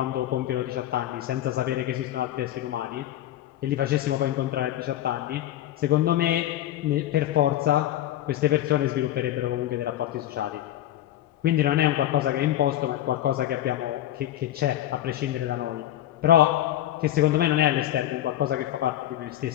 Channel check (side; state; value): right; quieter; 12.9 dB